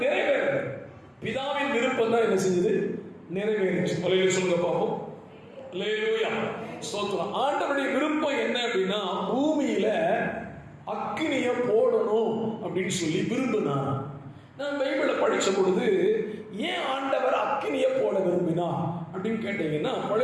நிறைவேறல. பிதாவின் விருப்பம் தான் என்ன செஞ்சது? நிறைவேறிச்சு. சொல்லுங்க பாப்போம். அல்லேலூயா, ஸ்தோத்திரம். ஆண்டவருடைய விருப்பம் என்ன அப்படின்னா, பூமியில அக்கினியை போடணும் அப்படின்னு சொல்லி விரும்பினார். நான் பைபிளை படிச்ச பொழுது ஏன் ஆண்டவர் அக்கினியை போட விரும்பினா அப்படின்னு கேட்டீங்கன்னா,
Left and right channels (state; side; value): identical; both; correlation 1.00